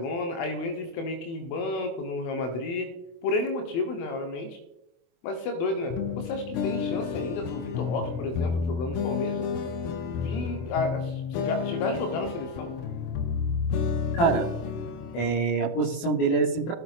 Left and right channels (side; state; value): right; late; 24 ms